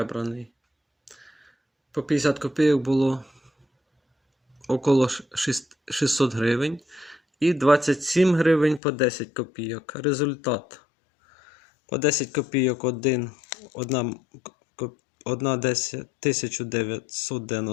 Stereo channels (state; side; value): drops out; right; at 8.8 s